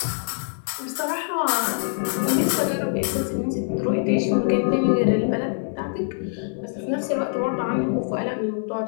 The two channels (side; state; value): right; silent; 59 dB below the other